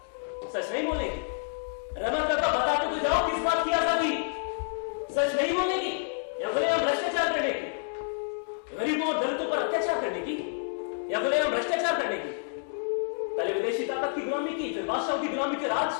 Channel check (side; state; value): right; silent; digital silence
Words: सच नहीं बोलेगी? रहमत काका, बताते तो जाओ, किस बात की आजादी? सच नहीं बोलेगी या बोले हम भ्रष्टाचार करने की, गरीबों और दलितों पर अत्याचार करने की, या बोले हम भ्रष्टाचार करने की? पहले विदेशी ताकत की गुलामी की, फिर बादशाहों की गुलामी, फिर